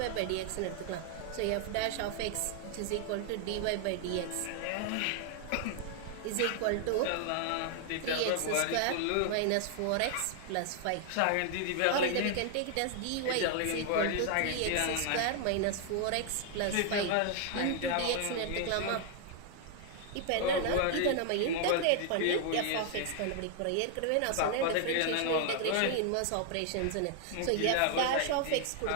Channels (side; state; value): both; different; correlation 0.00